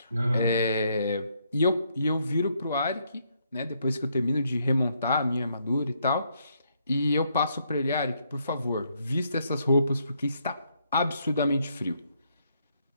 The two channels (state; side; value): inverted; both; correlation -0.73